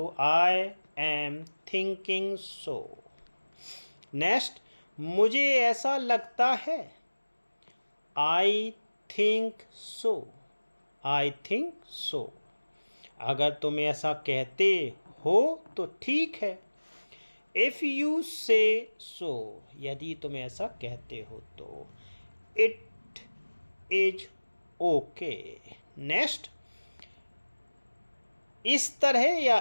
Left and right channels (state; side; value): inverted; both; correlation -1.00